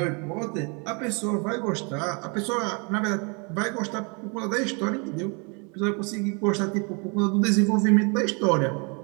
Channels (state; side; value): quieter; left; 33.5 dB